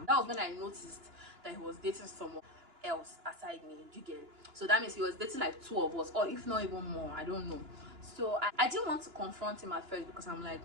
that was when I noticed that he was dating someone else aside me. Do you get it? So that means he was dating like 2 of us, or if not even more, I don't know. So I didn't want to confront him at first because I'm like,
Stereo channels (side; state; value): left; late; 2.9 ms